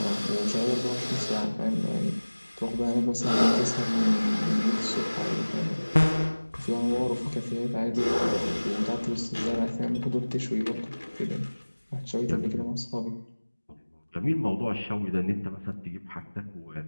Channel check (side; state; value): both; inverted; correlation -1.00